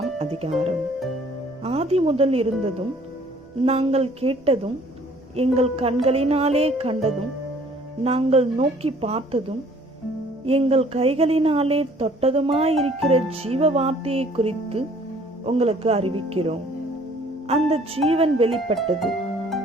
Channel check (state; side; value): normal; both; correlation 0.56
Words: அதிகாரம். ஆதி முதல் இருந்ததும் நாங்கள் கேட்டதும் எங்கள் கண்களினாலே கண்டதும் நாங்கள் நோக்கி பார்த்ததும் எங்கள் கைகளினாலே தொட்டதுமாயிருக்கிற ஜீவ வார்த்தையை குறித்து உங்களுக்கு அறிவிக்கிறோம். அந்த ஜீவன் வெளிப்பட்டது,